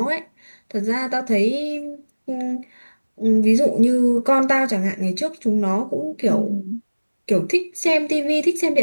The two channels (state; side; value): inverted; both; correlation -1.00